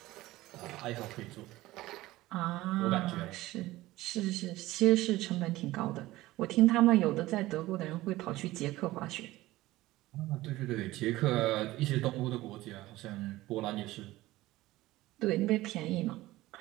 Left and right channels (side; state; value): left; quieter; 17.5 dB